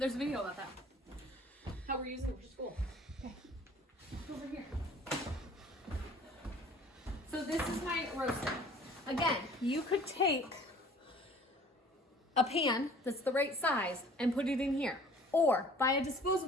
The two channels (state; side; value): normal; both; correlation 0.50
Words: a video about that. How we're using it for school. Okay. Over here. So this is my roaster. Again, you could take a pan that's the right size and put it in here. Or buy a